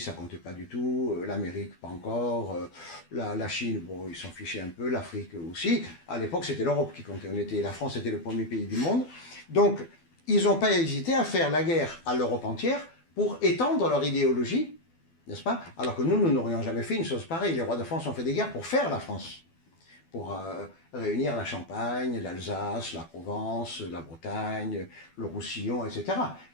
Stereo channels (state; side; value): late; right; 12 ms